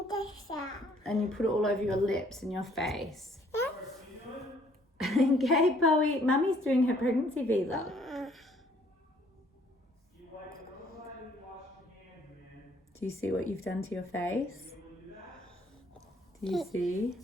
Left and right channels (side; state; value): both; normal; correlation 0.62